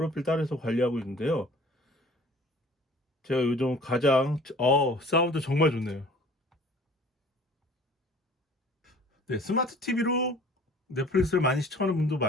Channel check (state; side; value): normal; both; correlation 0.49